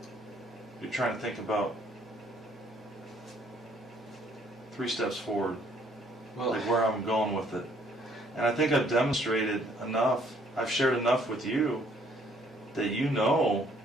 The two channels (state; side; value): normal; both; correlation 0.64